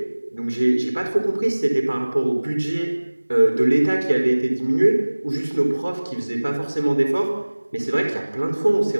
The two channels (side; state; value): both; inverted; correlation -1.00